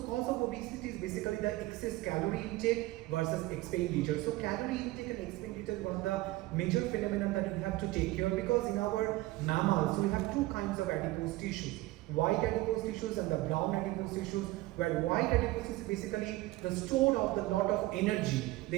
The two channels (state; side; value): quieter; left; 18.9 dB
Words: of obesity is basically the excess calorie intake versus expenditure. So calorie intake and expenditure is one of the major phenomena that we have to take care of, because in our mammals we have two kinds of adipose tissues: white adipose tissues and the brown adipose tissues, where white adipose is basically the store of the lot of energy.